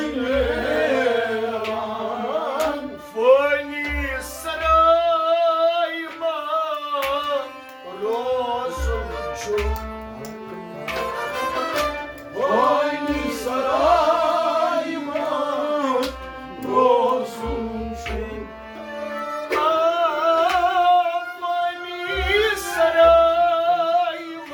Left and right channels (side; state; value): both; identical; correlation 1.00